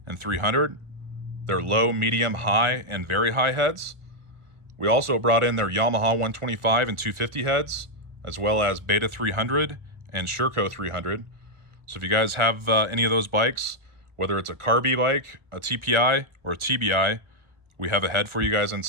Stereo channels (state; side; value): late; left; 1.4 ms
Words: and 300. Their low, medium, high, and very high heads. We also brought in their Yamaha 125 and 250 heads, as well as Beta 300 and Sherco 300. So if you guys have any of those bikes, whether it's a Carby bike, a TPI, or a TBI, we have a head for you guys in